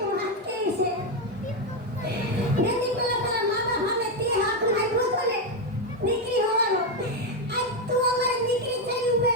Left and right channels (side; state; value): both; normal; correlation 0.06